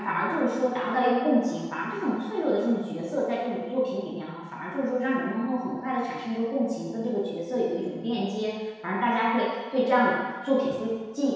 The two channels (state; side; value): identical; both; correlation 1.00